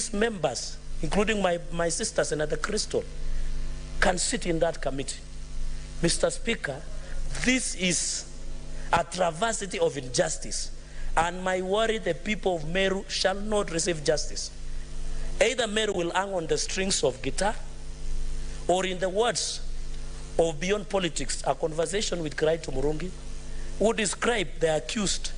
members, including my sister, Senator Crystal, can sit in that committee. Mr. Speaker, this is a travesty of injustice, and my worry, the people of Meru shall not receive justice. Either Meru will hang on the strings of guitar, or in the words of Beyond Politics, a conversation with Kraito Murungi, who described the accused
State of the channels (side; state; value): both; identical; correlation 1.00